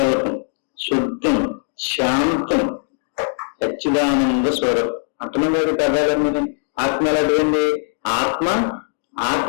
శుద్ధం, శాంతం, సచ్చిదానంద స్వరం. అంటున్నాడు కదాలని. ఆత్మ ఎలాంటిదండి? ఆత్మ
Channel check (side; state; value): right; silent; digital silence